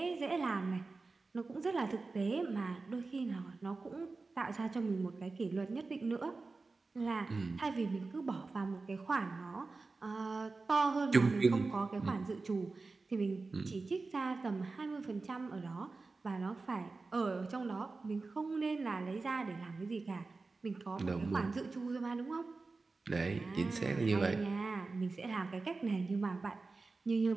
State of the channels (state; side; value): quieter; left; 3.8 dB